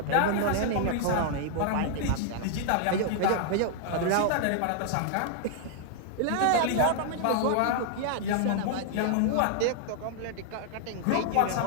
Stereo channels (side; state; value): both; different; correlation 0.00